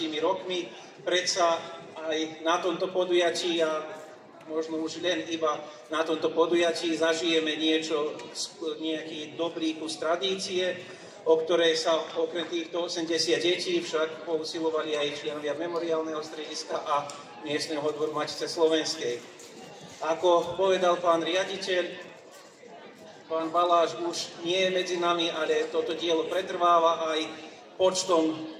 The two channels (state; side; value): identical; both; correlation 1.00